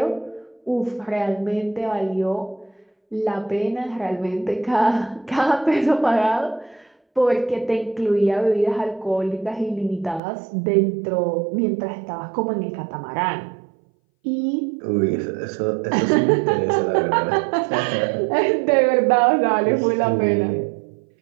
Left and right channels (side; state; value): left; drops out; at 10.2 s